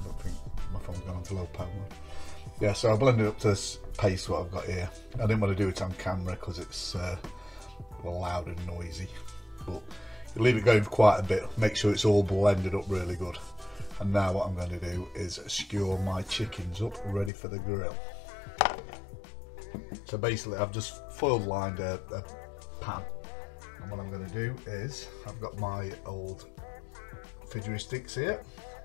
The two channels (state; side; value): drops out; right; at 17.3 s